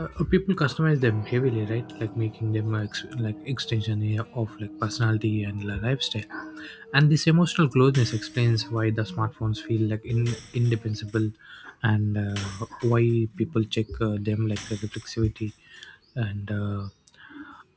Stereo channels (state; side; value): identical; both; correlation 1.00